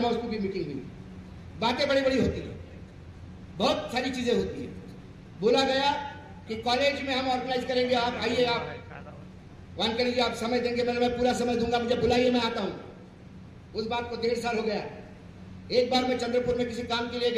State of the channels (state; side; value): identical; both; correlation 1.00